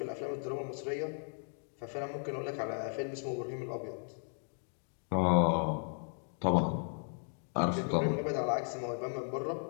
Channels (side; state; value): right; silent; 54 dB below the other